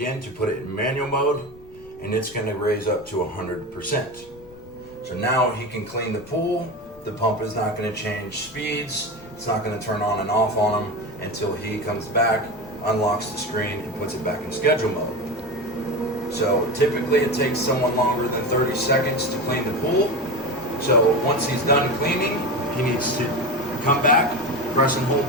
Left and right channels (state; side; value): noise; left; rumble, 24 dB below the sound